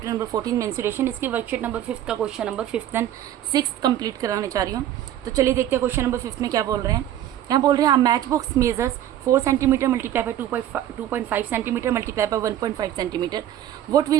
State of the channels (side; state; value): left; quieter; 11.7 dB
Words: number 14 mensuration इसकी वर्कशीट नंबर 5 का question number 5th and 6th complete कराने जा रही हूँ। तो चलिए देखते हैं क्वेश्चन नंबर 5 में क्या बोल रहे हैं। यहाँ बोल रहे हैं match box measures 4 centimetre multiply by 2.5 centimetre multiply by 1.5 centimetre. What